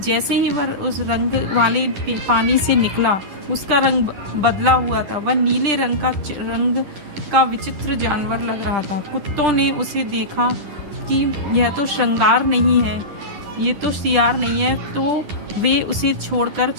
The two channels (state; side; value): late; left; 10 ms